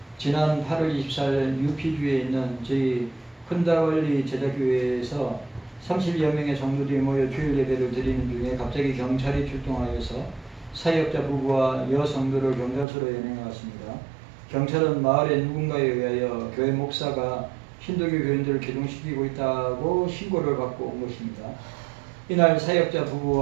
지난 8월 24일 UP주에 있는 저희 흔다월리 제자교회에서 30여 명의 성도들이 모여 주일 예배를 드리는 중에 갑자기 경찰이 출동하여서 사역자 부부와 여성도를 경찰서로 연행해왔습니다. 경찰은 마을의 누군가에 의하여 교회 목사가 힌두교 교인들을 개종시키고 있다고 신고를 받고 온 것입니다. 이날 사역자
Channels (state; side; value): drops out; left; at 12.9 s